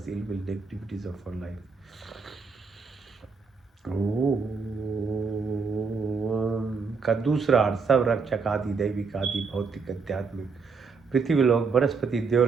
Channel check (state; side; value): quieter; left; 5.0 dB